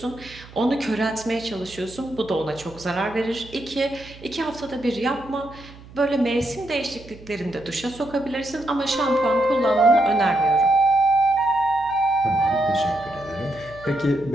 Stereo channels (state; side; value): noise; right; hum, 19 dB below the sound